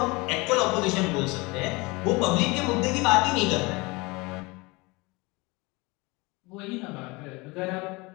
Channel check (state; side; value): quieter; right; 25.0 dB